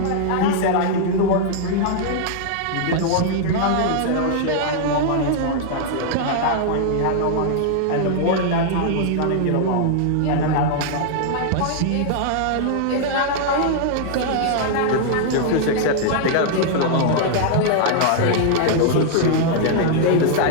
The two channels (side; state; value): both; different; correlation -0.01